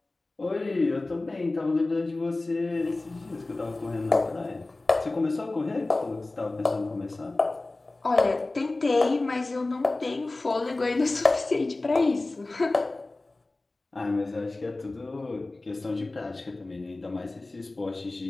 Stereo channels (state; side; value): quieter; right; 3.1 dB